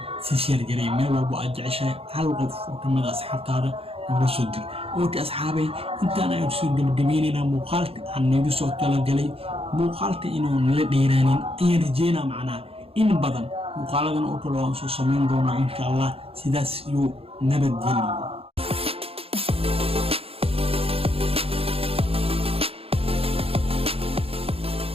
si share garay meel walbo aad jeceshahay hal qof oo kamid ah asxaabtaada nooga soo dir ookay asxaabay intaan aynu soo gabagabeynayna muuqaalka aan nagu soo talagalay muuqaalka inuu nala dheeraanin ayaan rajeynaa macnaha in badan muuqaaladan oo kale waan soo samayn doonaa insha allah sidaas iyo nabadgelyo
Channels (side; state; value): left; late; 0.28 ms